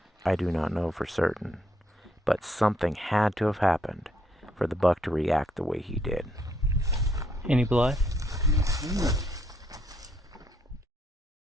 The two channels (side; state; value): both; normal; correlation 0.72